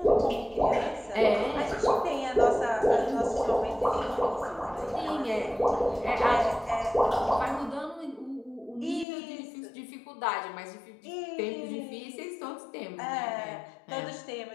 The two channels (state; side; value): drops out; right; at 9.1 s